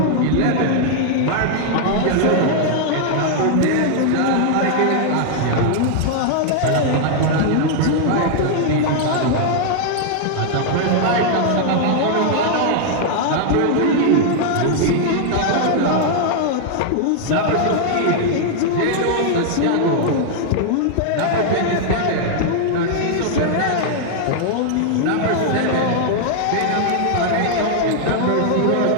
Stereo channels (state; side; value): different; both; correlation 0.00